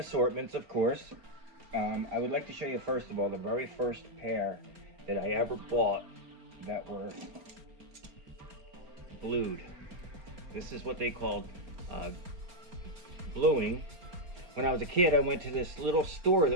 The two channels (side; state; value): left; late; 4.3 ms